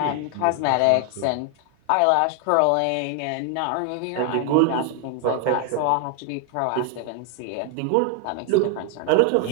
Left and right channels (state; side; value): different; both; correlation 0.00